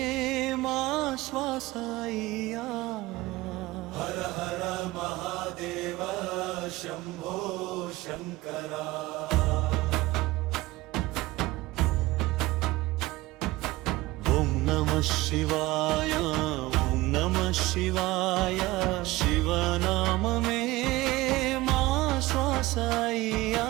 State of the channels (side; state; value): left; quieter; 19.3 dB